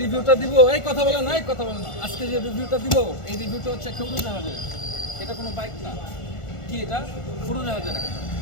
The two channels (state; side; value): late; right; 1.4 ms